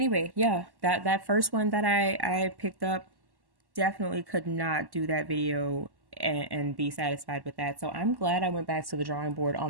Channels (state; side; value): late; left; 1.1 ms